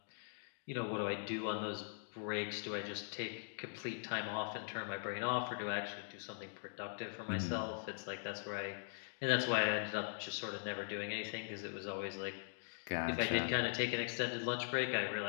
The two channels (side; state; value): right; silent; digital silence